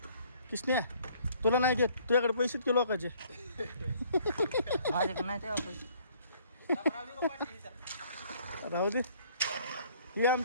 किसने तुला नाही घेत तुझ्याकडे पैसे के लोकांचे राहू दे ही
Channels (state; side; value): inverted; both; correlation -0.59